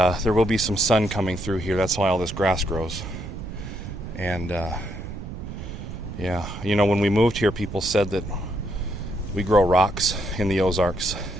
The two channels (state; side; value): noise; right; rumble, 9 dB below the sound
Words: will be some sun coming through here. That's why all this grass grows. And when we moved here, people said that we grow rocks in the Ozarks,